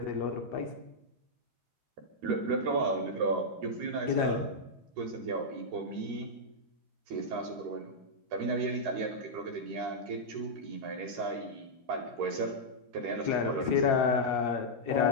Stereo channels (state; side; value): late; left; 13 ms